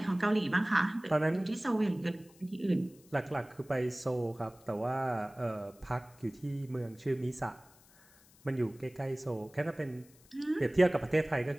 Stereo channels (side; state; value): left; noise; hiss, 27 dB below the sound